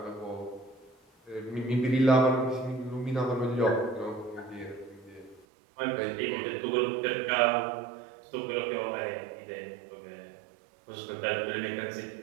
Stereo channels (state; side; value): drops out; left; at 5.5 s